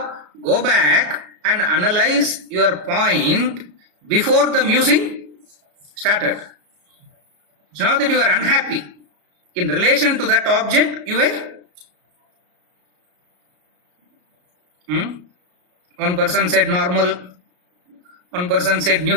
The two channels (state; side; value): late; left; 33 ms